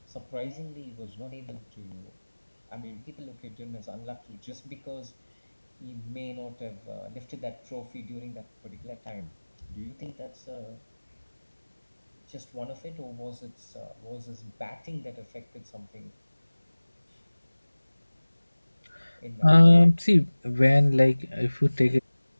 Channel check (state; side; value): inverted; both; correlation -1.00